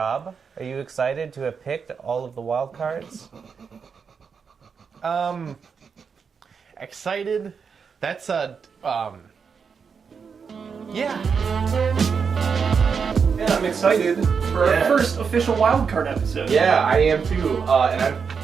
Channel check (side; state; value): left; quieter; 6.0 dB